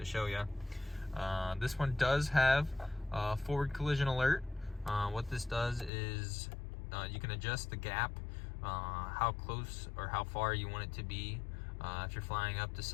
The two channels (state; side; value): drops out; right; at 5.9 s